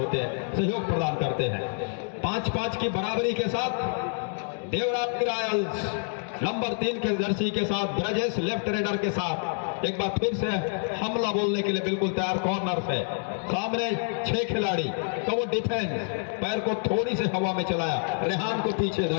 हैं, सहयोग प्रदान करते हैं। 5-5 की बराबरी के साथ देवरानी रायल्स नंबर 3 के जर्सी के साथ ब्रजेश लेफ्ट रेडर के साथ एक बार फिर से हमला बोलने के लिए बिल्कुल तैयार। कॉर्नर से सामने 6 खिलाड़ी का वो डिफेंस, पैर को थोड़ी से हवा में चलाया, रेहान को पीछे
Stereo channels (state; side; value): silent; right; 59 dB below the other